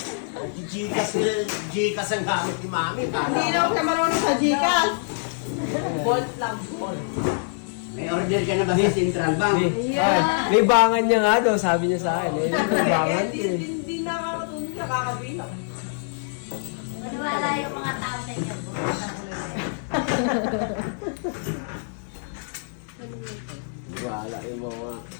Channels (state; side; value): silent; right; digital silence